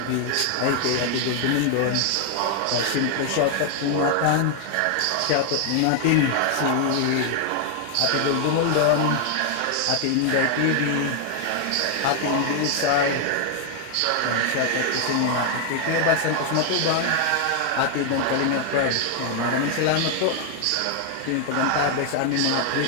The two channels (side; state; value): both; different; correlation 0.00